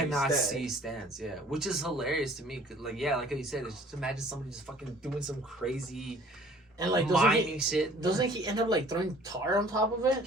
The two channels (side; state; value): both; normal; correlation 0.52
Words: see stands." Yeah, which is hilarious to me. Like, yeah, like you said, it's just imagine somebody just fucking doing some crazy and like mining shit. Doesn't he end up like throwing tar on top of it?